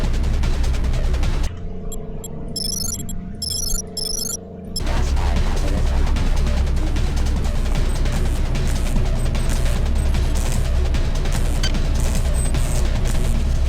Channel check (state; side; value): identical; both; correlation 1.00